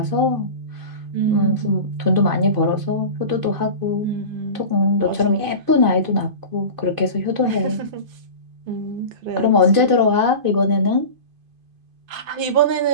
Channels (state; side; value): late; left; 2.5 ms